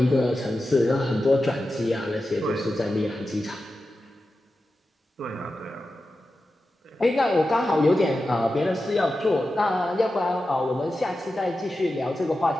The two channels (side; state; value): both; normal; correlation 0.92